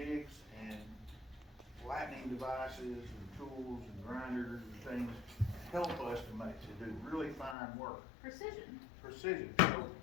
and flattening devices and tools and grinders and things help us to do really fine work. Precision. Precision. So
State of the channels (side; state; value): right; drops out; at 7.6 s